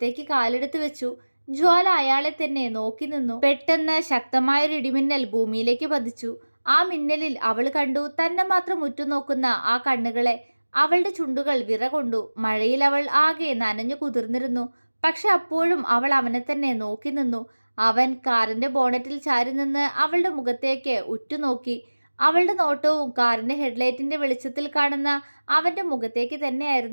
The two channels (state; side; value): inverted; both; correlation -1.00